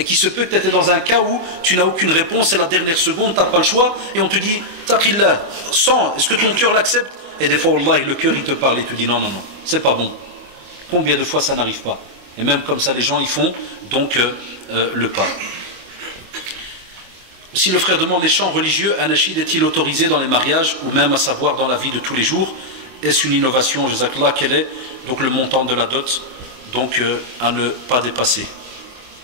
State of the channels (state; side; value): late; left; 24 ms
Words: qui se peut que tu étais dans un cas où tu n'as aucune réponse, c'est la dernière seconde, tu n'as pas le choix, et on te dit, taqillah, sens, est-ce que ton cœur l'accepte? Et des fois, Allah, le cœur, il te parle et te dit, non, c'est pas bon. Combien de fois ça n'arrive pas? Et même comme ça, les gens, ils font donc le pas. Si le frère demande les chants religieux, un nashid est-il autorisé dans les mariages, ou même à savoir dans la vie de tous les jours? Est-ce une innovation, jazakallah? Quel est donc le montant de la dot, donc à ne pas dépasser?